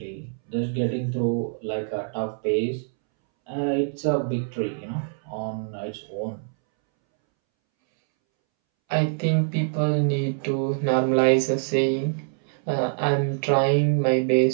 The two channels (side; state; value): left; silent; 62 dB below the other